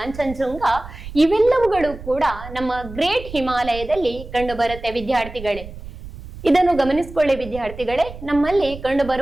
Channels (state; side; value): noise; right; rumble, 13 dB below the sound